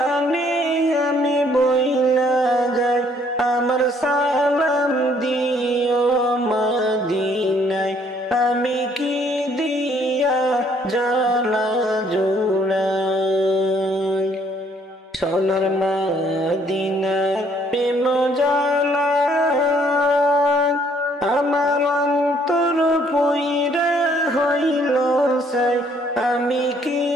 সালাম দিও মদিনায়, আমি কি দিয়া জ্বালা জুড়াই। সোনার মদিনার প্রেম জ্বালা আমার অন্তর পুইরা হইল সাই, আমি কি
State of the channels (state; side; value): normal; both; correlation 0.64